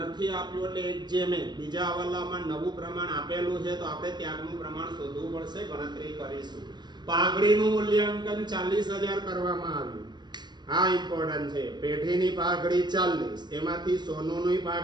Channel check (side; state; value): left; late; 0.21 ms